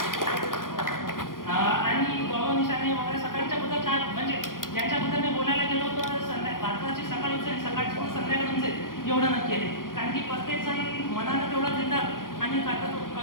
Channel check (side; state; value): right; late; 0.90 ms